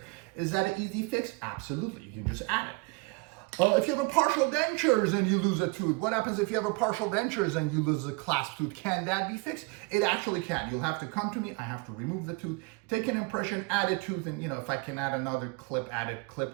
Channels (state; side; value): quieter; left; 27.2 dB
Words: Is that an easy fix? Absolutely, you can just add it. If you have a partial dentures and you lose a tooth, what happens if you have a partial dentures and you lose a clasp tooth? Can that be fixed? It actually can. You'll have to come to me, I have to remove the tooth, take an impression, add a tooth, and if I can add another clip, add a